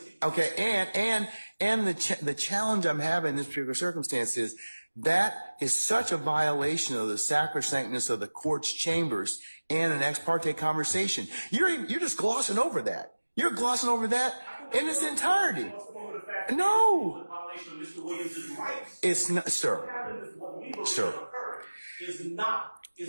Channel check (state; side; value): inverted; both; correlation -1.00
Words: Okay. And the challenge I'm having in this particular circumstance is that is such a violation of the sacrosanctness of the court's chambers and an ex parte conversation. You're just glossing over that. You're glossing over that in its entirety. No. It's not, sir. Sir.